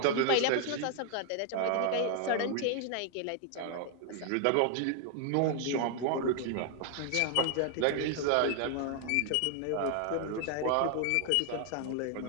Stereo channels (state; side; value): different; both; correlation 0.00